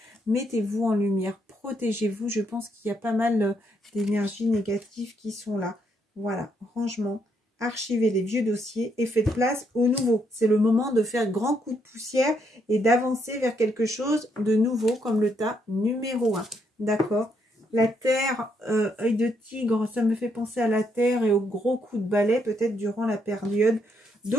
mettez-vous en lumière, protégez-vous. Je pense qu'il y a pas mal d'énergies négatives qui sont là. Voilà, rangement, archivez les vieux dossiers et faites place au nouveau. C'est le moment de faire grand coup de poussière et d'avancer vers quelque chose de nouveau comme le tas numéro 1. D'accord? La terre, œil de tigre, ça me fait penser à la terre et au gros coup de balai peut-être durant la période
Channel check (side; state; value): both; normal; correlation 0.75